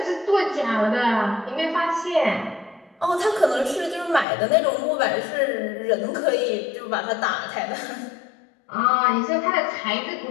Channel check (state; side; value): drops out; right; at 4.2 s